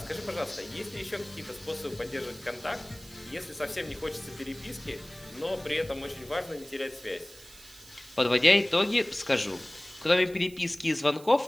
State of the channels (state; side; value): noise; right; hiss, 20 dB below the sound